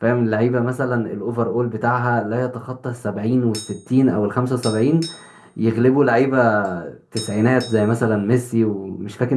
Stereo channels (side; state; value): both; identical; correlation 1.00